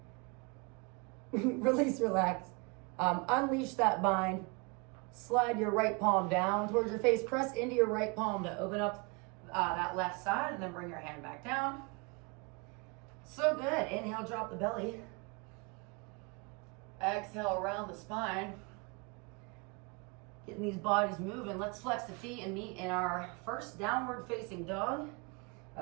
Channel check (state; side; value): quieter; left; 30.5 dB